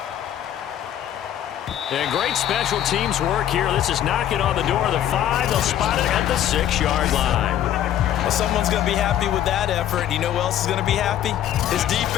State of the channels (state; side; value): quieter; right; 11.1 dB